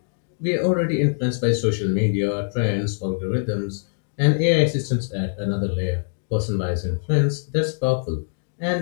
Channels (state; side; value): silent; right; digital silence